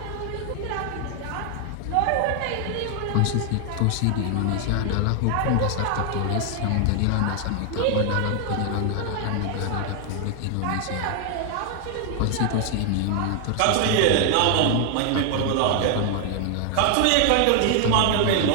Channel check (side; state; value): both; different; correlation 0.00